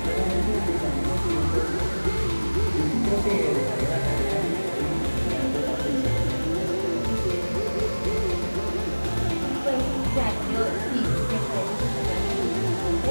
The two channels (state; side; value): inverted; both; correlation -1.00